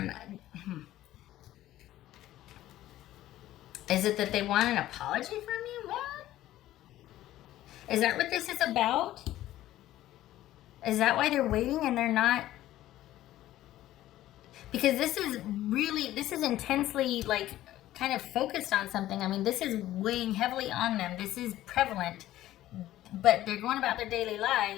Is it that they want an apology from you? What? Is that what this is about? Is that why they're waiting and they're not? Because this is intensely, like, kind of focused on something. This is weighing heavily on them. This is prevalent. But they're going about their daily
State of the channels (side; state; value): right; quieter; 14.3 dB